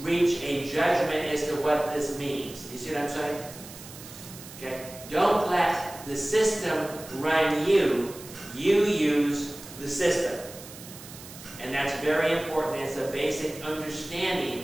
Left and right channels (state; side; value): noise; right; hiss, 16 dB below the sound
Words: a judgment as to what this means. You see what I'm saying? Okay? Don't let the system run you. You use the system. And that's very important. It's a basic